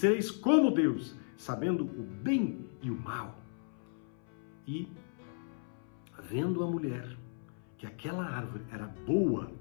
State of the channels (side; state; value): right; silent; 54 dB below the other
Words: como Deus, sabendo o bem e o mal. E, vendo a mulher que aquela árvore era boa